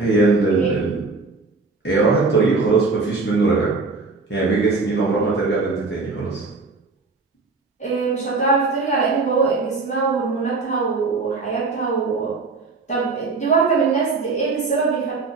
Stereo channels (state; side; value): quieter; left; 3.9 dB